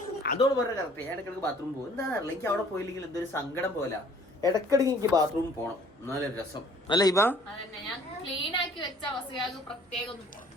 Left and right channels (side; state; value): both; normal; correlation 0.55